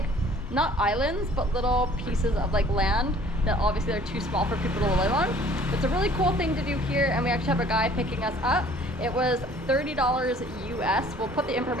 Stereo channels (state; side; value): normal; both; correlation 0.53